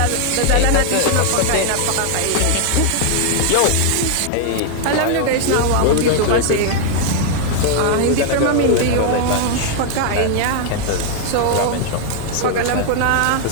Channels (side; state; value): both; different; correlation 0.00